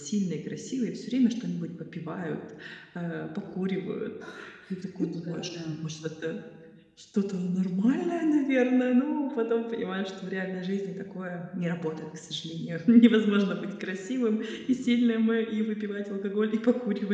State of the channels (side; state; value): both; identical; correlation 1.00